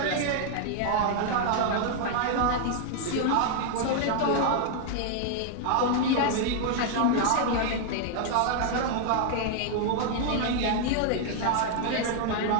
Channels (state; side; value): different; both; correlation -0.01